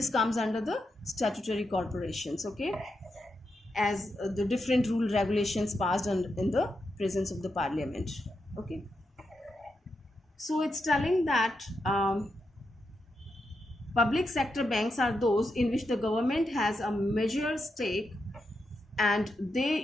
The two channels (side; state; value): both; normal; correlation 0.85